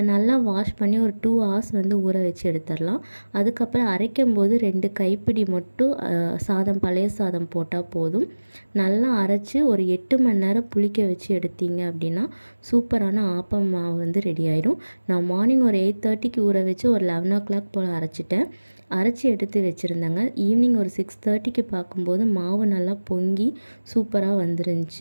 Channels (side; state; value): both; inverted; correlation -1.00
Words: நல்லா வாஷ் பண்ணி ஒரு 2 ஹவர்ஸ் ஊற வச்சு எடுத்துடலாம். அதுக்கப்புறம் அரைக்கும் போது 2 கைப்பிடி மட்டும் சாதம், பழைய சாதம் போட்டால் போதும். நல்லா அரைச்சி ஒரு 8 மணி நேரம் புளிக்க வச்சு எடுத்தீங்க அப்படின்னா சூப்பரான ஆப்பம் மாவு ரெடி ஆகிடும். நான் மார்னிங் ஒரு 8:30க்கு ஊற வச்சு ஒரு 11 o'clock போல் அரைச்சிட்டேன். அரைச்சி எடுத்து வச்சுருந்தேங்க. ஈவினிங் ஒரு 6:30க்கு பார்க்கும்போது மாவு நல்லா பொங்கி சூப்பராக